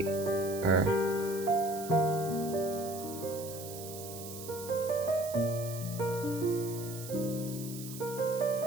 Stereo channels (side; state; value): right; noise; hiss, 12 dB below the sound